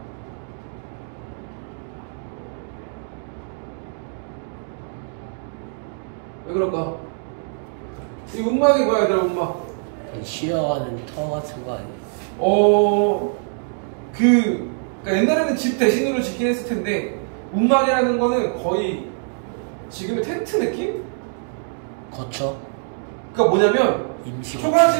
왜 그럴까? 이 움막이 뭐야 얘들아 움막? 쉬어가는 터 같은 거 아니에요? 그러니까 옛날에는 집 대신으로 짓긴 했을 텐데 움막이라는 거는 거의 지금의 텐트 느낌? 거쳐. 그러니까 뭐냐면 임시.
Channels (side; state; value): left; silent; 63 dB below the other